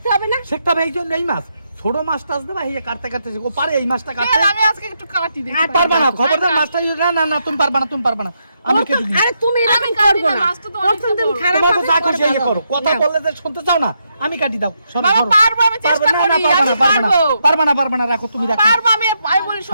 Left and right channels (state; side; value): inverted; both; correlation -0.80